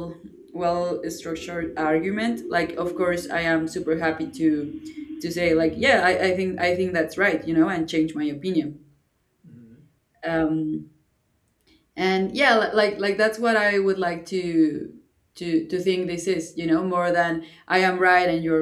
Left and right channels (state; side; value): identical; both; correlation 1.00